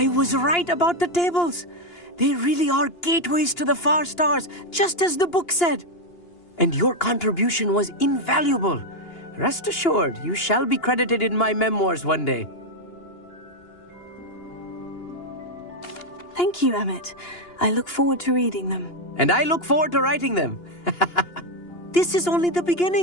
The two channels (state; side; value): late; right; 2.9 ms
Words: was right about the tables. They really are gateways to the far stars, just as the book said. And your contribution was invaluable. Rest assured, you shall be credited in my memoirs one day. Thank you, Emmett. I look forward to reading them. And I look forward to writing them. This is only the